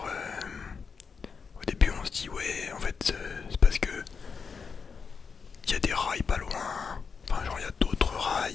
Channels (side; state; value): right; quieter; 5.6 dB